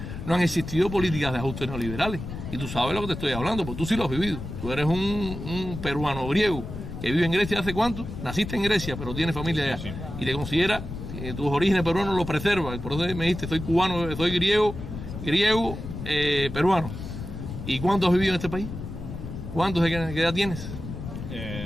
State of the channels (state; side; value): noise; left; rumble, 8 dB below the sound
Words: no han existido políticas de ajuste neoliberales. Y tú sabes lo que te estoy hablando, porque tú sí lo has vivido. Tú eres un peruano griego que vive en Grecia ¿hace cuánto? Naciste en Grecia, pero tienes familia allá. Sí. Y te considera tus orígenes peruanos lo preserva. Por eso me dijiste, soy cubano, soy griego, peruano. ¿Y cuánto has vivido en este país? ¿Qué edad tienes?